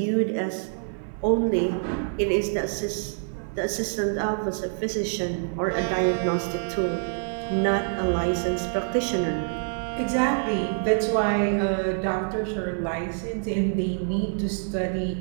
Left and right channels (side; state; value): left; silent; 57 dB below the other